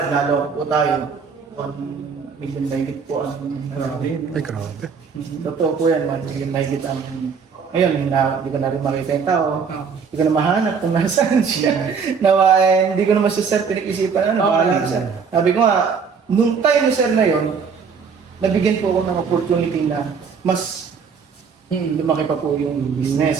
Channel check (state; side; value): quieter; left; 5.9 dB